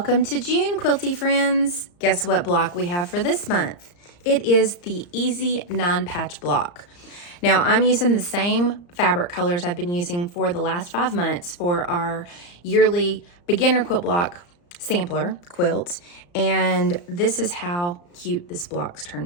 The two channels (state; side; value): late; right; 34 ms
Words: to June, quilty friends. Guess what block we have for this month? It is the Easy 9-Patch block. Now, I'm using the same fabric colors I've been using for the last 5 months for our yearly beginner quilt block sampler quilt, and this is how cute this block